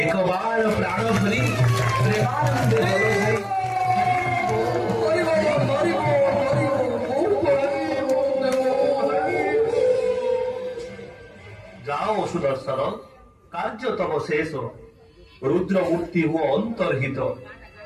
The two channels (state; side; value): identical; both; correlation 1.00